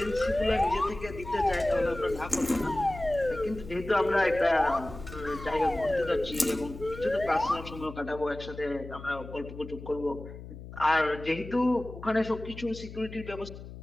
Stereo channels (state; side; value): noise; left; hum, 13 dB below the sound